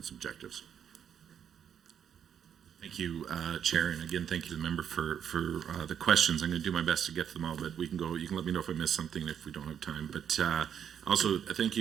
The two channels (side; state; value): left; quieter; 8.6 dB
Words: objectives. Thank Thank you, Chair, and again, thank you to the member for the questions. I'm going to do my best to get to them all, but we can go. You can let me know if I miss something if we don't have time. But also, thank